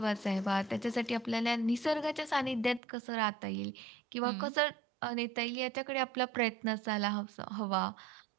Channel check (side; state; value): left; drops out; at 2.8 s